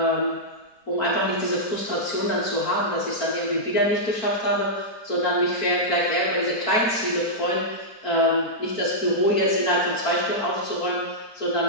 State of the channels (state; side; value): late; right; 4.4 ms